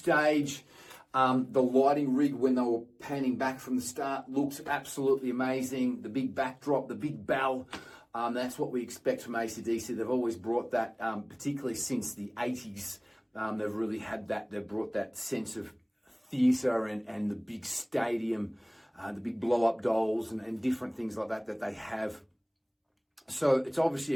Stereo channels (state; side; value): identical; both; correlation 1.00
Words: The lighting rig, when they were panning back from the start, looks absolutely amazing. The big backdrop, the big bell, that's what we expect from AC/DC. They've always brought that, particularly since the 80s. They've really had that. They've brought that sense of theatre and the big stadium, the big blow-up dolls and different things like that they have. So it's obviously